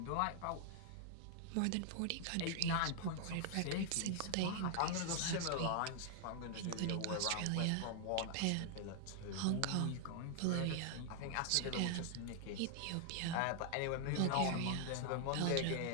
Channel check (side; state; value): both; different; correlation 0.00